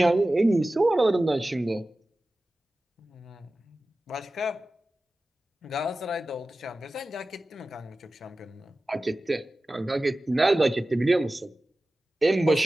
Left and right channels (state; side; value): normal; both; correlation 0.96